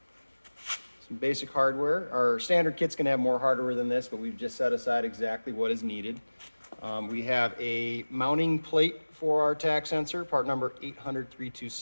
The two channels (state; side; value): inverted; both; correlation -1.00